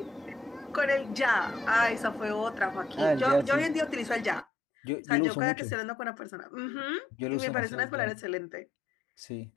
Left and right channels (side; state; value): right; drops out; at 4.5 s